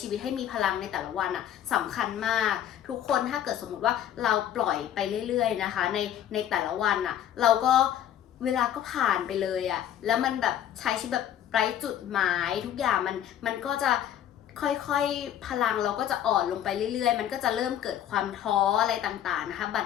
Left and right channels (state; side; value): quieter; right; 10.7 dB